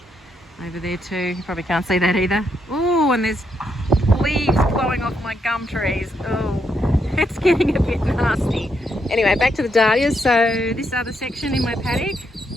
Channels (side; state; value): both; normal; correlation 0.78